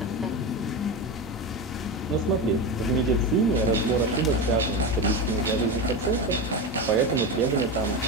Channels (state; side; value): normal; both; correlation 0.19